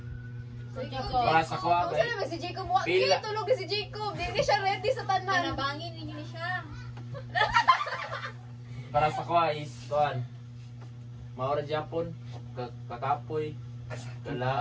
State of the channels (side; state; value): both; identical; correlation 1.00